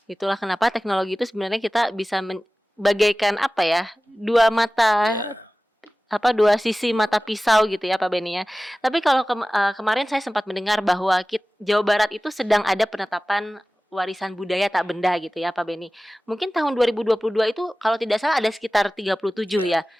Itulah kenapa teknologi itu sebenarnya kita bisa bagaikan apa ya? Dua mata dua sisi mata pisau gitu ya Pak Beni ya. Tapi kalau kemarin saya sempat mendengar bahwa Jawa Barat itu sedang ada penetapan warisan budaya tak benda gitu ya Pak Beni. Mungkin tahun 2022 itu kalau tidak salah ada sekitar 37 ya.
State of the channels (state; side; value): normal; both; correlation 0.97